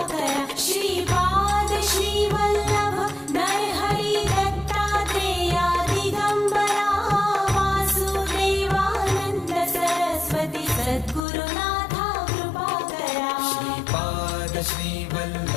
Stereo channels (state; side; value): drops out; right; at 11.2 s